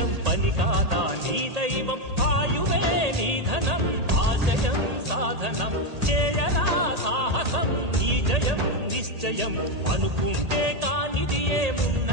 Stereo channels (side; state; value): left; late; 1.8 ms